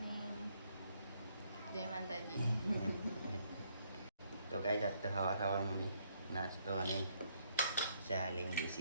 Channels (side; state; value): both; inverted; correlation -0.71